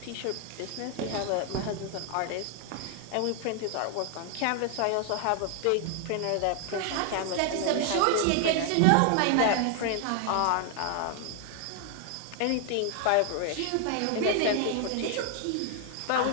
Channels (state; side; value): different; both; correlation 0.00